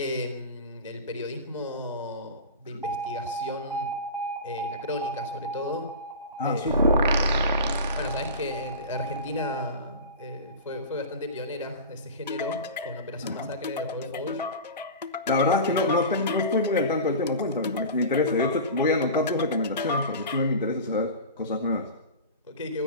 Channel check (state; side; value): inverted; both; correlation -0.30